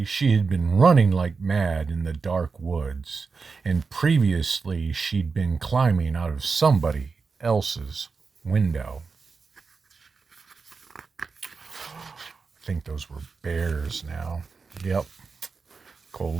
she had been running like mad in the dark woods, and previously, she'd been climbing out of somebody else's window. I think those were bears now. Yep.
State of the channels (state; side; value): quieter; left; 4.8 dB